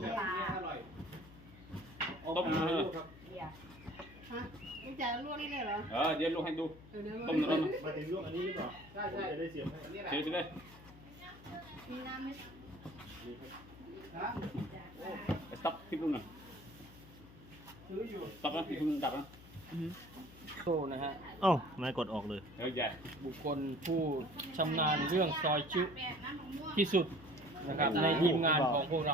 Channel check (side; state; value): left; noise; hum, 19 dB below the sound